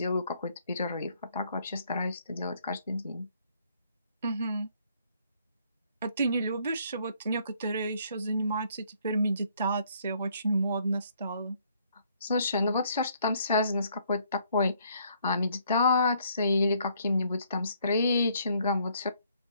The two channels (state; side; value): inverted; both; correlation -0.66